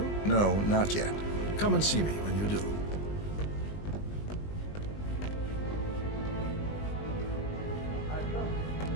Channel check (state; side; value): late; right; 20 ms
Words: No, not yet. Come and see me when you do.